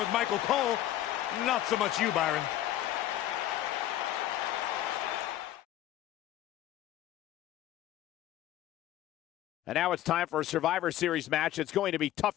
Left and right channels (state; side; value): quieter; right; 13.3 dB